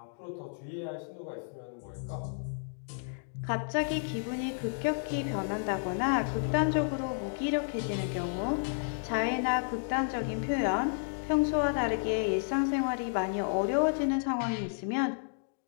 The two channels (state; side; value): silent; right; digital silence